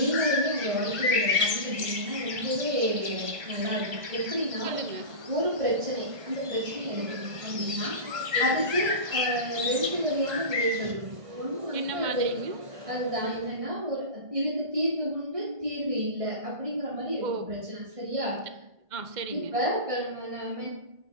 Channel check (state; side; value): late; left; 1.5 ms